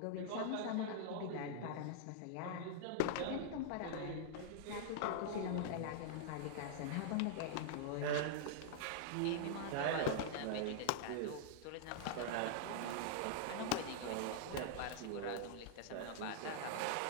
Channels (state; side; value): different; both; correlation -0.01